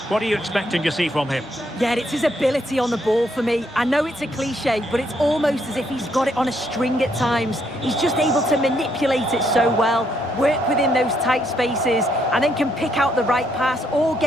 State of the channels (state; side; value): normal; both; correlation 0.73